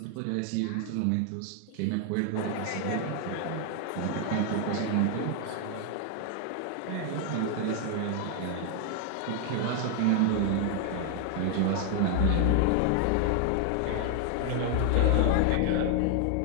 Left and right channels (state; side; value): different; both; correlation 0.00